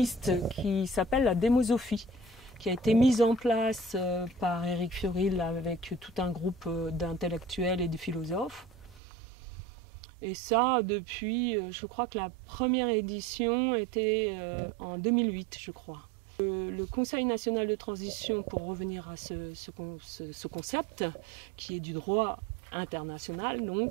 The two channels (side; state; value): left; drops out; at 9.0 s